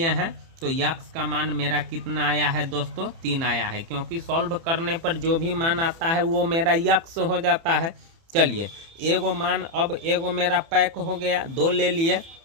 हैं तो x का मान मेरा कितना आया है दोस्तों, 3 आया है, क्योंकि सॉल्व करने पर जो भी मान आता है वो मेरा x हो जाता है। चलिए एगो मान, अब एगो मेरा पैक हो गया, 2 ले लिए,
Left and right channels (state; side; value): late; left; 30 ms